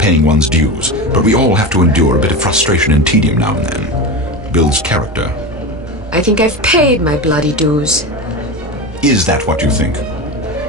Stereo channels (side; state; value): both; normal; correlation 0.23